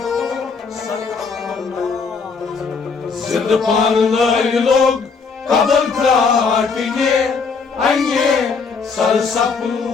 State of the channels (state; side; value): quieter; right; 5.1 dB